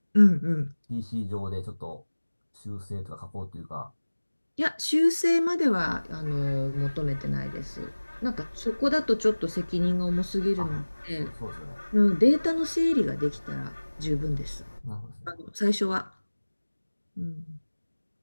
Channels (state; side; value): inverted; both; correlation -1.00